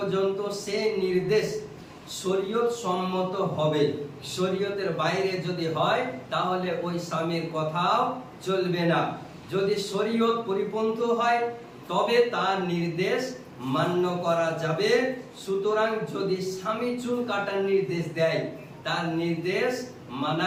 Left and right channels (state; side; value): identical; both; correlation 1.00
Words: সেই নির্দেশ শরীয়ত সম্মত হবে, শরীয়তের বাইরে যদি হয় তাহলে ওই স্বামীর কথাও চলবে না। যদি শরীয়ত পরিপন্থী হয় তবে তার নির্দেশ মান্য করা যাবে। সুতরাং যদি স্বামী চুল কাটার নির্দেশ দেয়, তার নির্দেশ